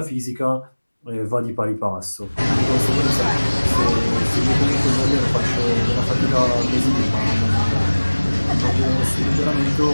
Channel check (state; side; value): inverted; both; correlation -1.00